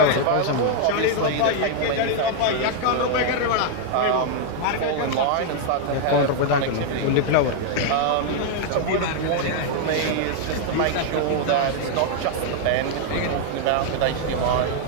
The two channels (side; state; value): both; different; correlation 0.00